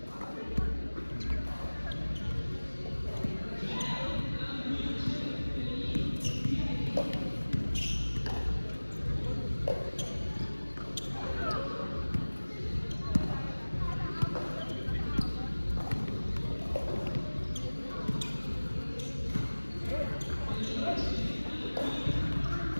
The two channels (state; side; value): inverted; both; correlation -1.00